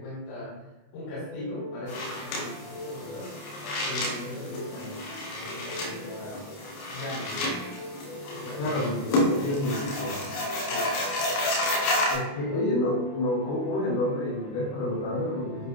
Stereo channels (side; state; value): right; late; 28 ms